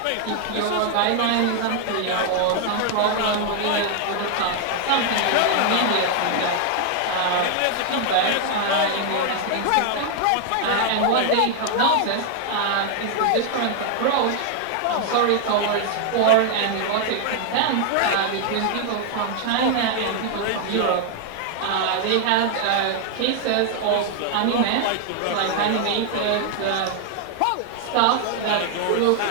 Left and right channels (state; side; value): different; both; correlation 0.00